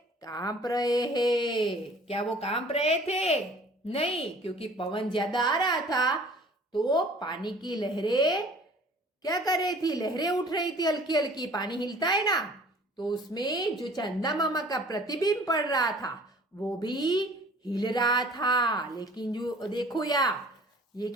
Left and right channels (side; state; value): both; normal; correlation 0.50